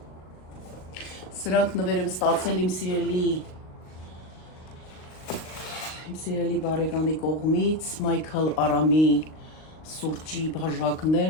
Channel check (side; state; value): right; late; 38 ms